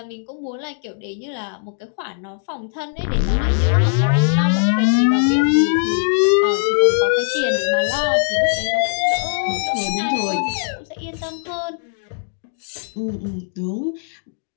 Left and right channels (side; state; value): right; silent; digital silence